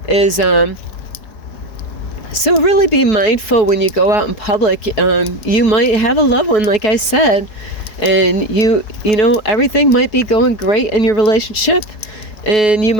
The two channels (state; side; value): late; right; 4.7 ms